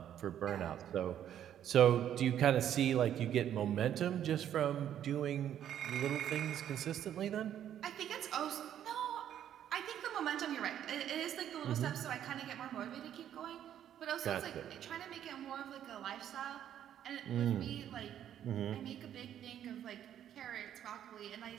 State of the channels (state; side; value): quieter; left; 10.4 dB